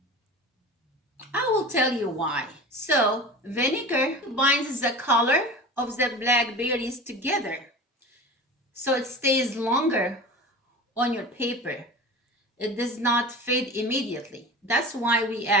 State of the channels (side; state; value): both; normal; correlation 0.34